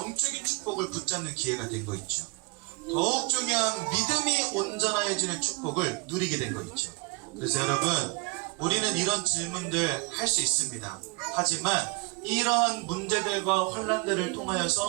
축복을 붙잡는 기회가 된 거 있죠. 더욱 중요한 믿음이 온전하여지는 축복을 누리게 된 거 있죠. 그래서 여러분, 우리는 이런 질문들 할 수 있습니다. 하지만 이러한 문제들과 환난들을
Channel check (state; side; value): quieter; left; 27.4 dB